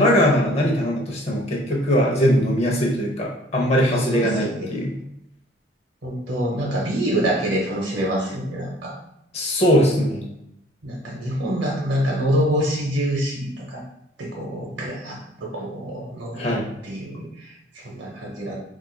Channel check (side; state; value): both; normal; correlation 0.54